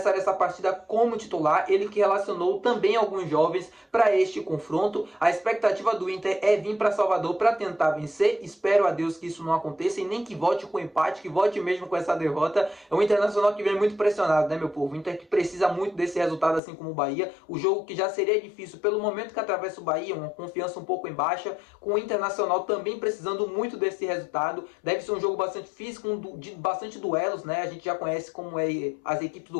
essa partida como titular. Ele que relacionou também alguns jovens para este confronto. A expectativa do Inter é vir para Salvador para tentar vencer. Espero a Deus que isso não aconteça e nem que volte com empate, que volte mesmo com essa derrota. É um Internacional que vem muito pressionado, né, meu povo? Inter que precisa muito desse resultado, assim como o Bahia. O jogo que já seria difícil pelo momento que atravessa o Bahia, uma confiança um pouco em baixa, com o Internacional também precisando muito desse resultado. Deve ser um jogo bastante físico, de bastante duelos, né? A gente já conhece como é as equipes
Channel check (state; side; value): drops out; right; at 16.6 s